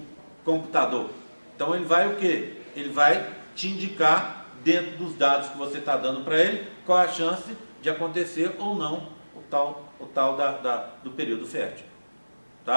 computador. Então ele vai o quê? Ele vai te indicar, dentro dos dados que você está dando para ele, qual a chance de acontecer ou não o tal do período fértil.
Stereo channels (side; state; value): both; inverted; correlation -1.00